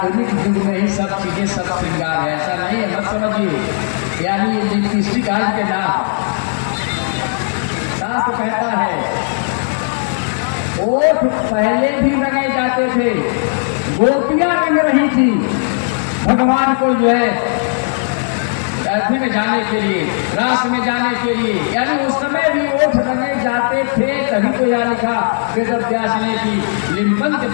युग में ही सब चीजें सब श्रृंगार है। ऐसा नहीं है, मत समझिए। यानी ये लिपस्टिक आज के नाम, शास्त्र कहता है ओठ पहले भी रंगे जाते थे, गोपियां रंग रही थी भगवान को जो है अर्थी में जाने के लिए, रास में जाने के लिए, यानी उस समय भी ओठ रंगे जाते थे। तभी तो यहाँ लिखा वेद व्यास ने कि लिम्पन्ति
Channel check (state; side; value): silent; right; digital silence